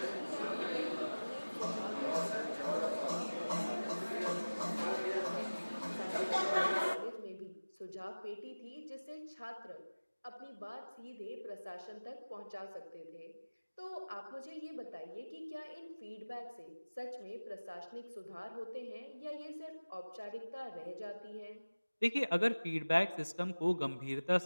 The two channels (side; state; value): both; inverted; correlation -1.00